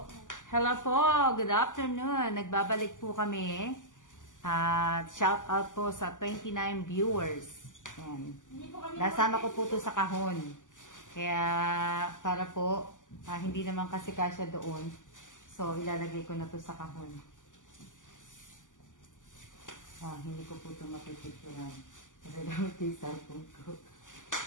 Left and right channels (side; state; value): right; late; 0.87 ms